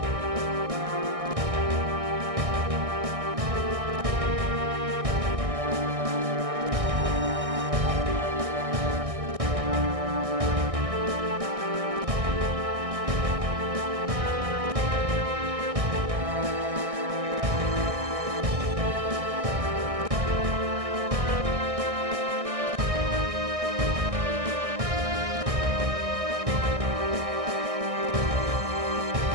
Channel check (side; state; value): left; late; 1.6 ms